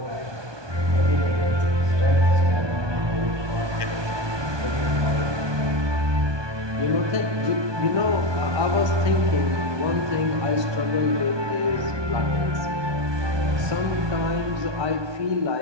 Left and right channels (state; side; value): late; left; 1.2 ms